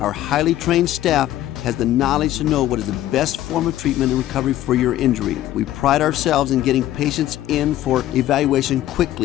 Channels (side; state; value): right; quieter; 13.6 dB